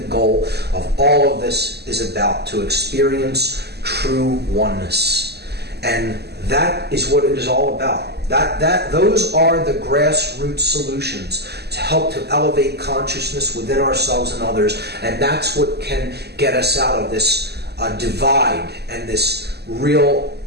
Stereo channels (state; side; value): late; left; 0.48 ms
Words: goal of all of this is about, to experience true oneness. And that is what it is all about. Those are the grassroots solutions to help to elevate consciousness within ourselves and others. And that's what can get us out of this divide and this real